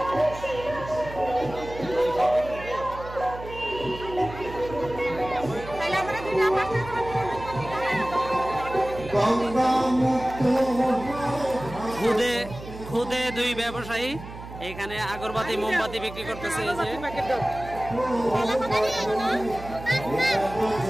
খুদে দুই ব্যবসায়ী এখানে আগরবাতি মোমবাতি বিক্রি করতেছে। এই যে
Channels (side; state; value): right; noise; hum, 13 dB below the sound